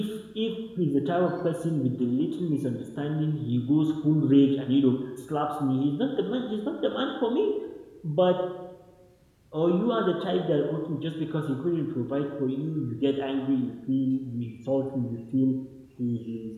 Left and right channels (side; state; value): both; identical; correlation 1.00